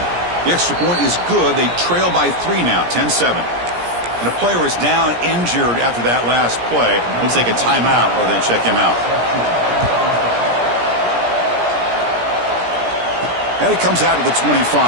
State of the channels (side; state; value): left; late; 17 ms